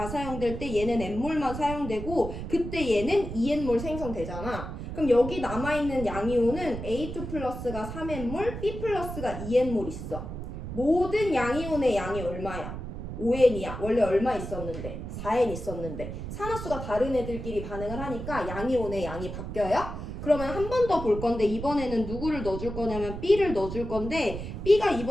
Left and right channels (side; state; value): right; noise; rumble, 7 dB below the sound